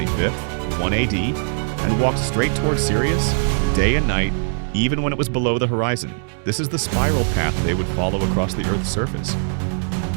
1 AD, and walked straight towards Sirius, day and night, even when it was below the horizon, this is the spiral path they would follow across the Earth's surface.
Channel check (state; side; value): silent; left; 64 dB below the other